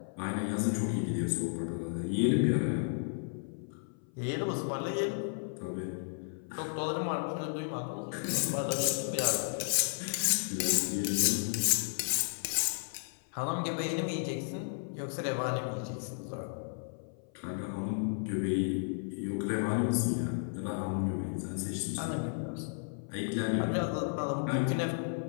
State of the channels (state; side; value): silent; right; 55 dB below the other